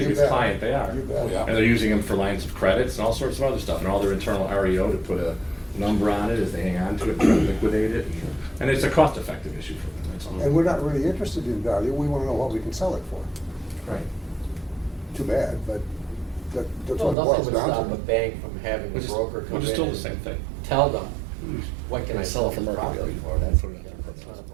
biggest bet. client, they are. You bet. Yeah. And they're using them for lines of credits and all sorts of other stuff, and all their internal REO to put a number on it as they hang on to it and try to liquidate it. And it's a cost-effective issue for them, that's all. And we're not really interested in value, we wanna know what we can sell it for. Right. Too bad, but that's Well, what it nothing boils would down stop a to. bank from having the Which is, broker come in which is still the and same thing. tell them, what can I sell for this market property value. for? That's not a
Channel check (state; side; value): drops out; left; at 17.2 s